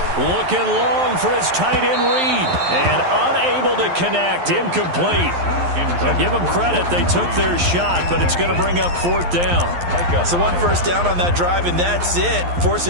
looking long for his tight end read. And unable to connect. Incomplete. I'll give them credit. They took their shot, but it's going to bring up 4th down. So 1 first down on that drive, and that's it. Forced to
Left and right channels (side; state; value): left; late; 11 ms